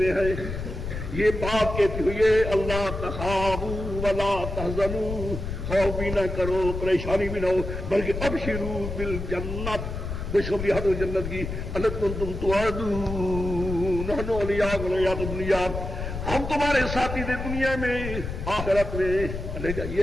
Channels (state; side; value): noise; left; rumble, 6 dB below the sound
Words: ہیں. یہ بات کہتی ہوئی ہے اللہ تخافوا ولا تحزنوا، خوف بھی نہ کرو، پریشانی بھی نہ ہو، بلکہ ابشروا بالجنت، خوشخبری حد جنت کی. التی کنتم توعدون نحن اولیاؤکم فی الحیاۃ الدنیا، ہم تمہارے ساتھی تھے دنیا میں، آخرت میں. یہ